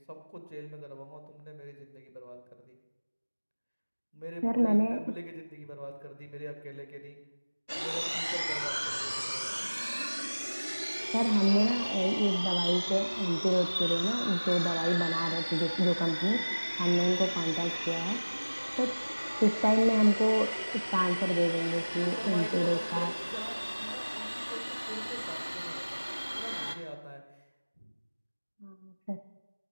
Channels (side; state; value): both; inverted; correlation -1.00